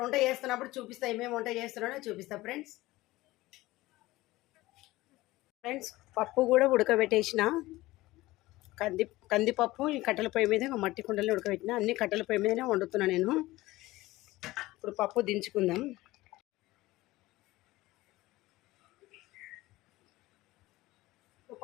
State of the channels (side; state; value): right; quieter; 18.5 dB